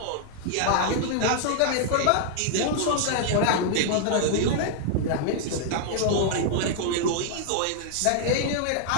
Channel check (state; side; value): different; both; correlation -0.01